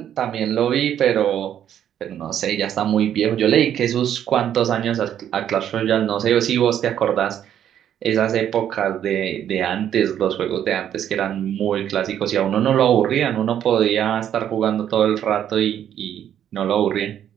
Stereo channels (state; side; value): quieter; left; 10.1 dB